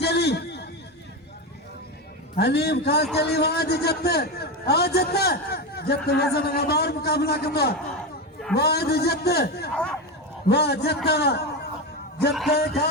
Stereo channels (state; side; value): normal; both; correlation 0.16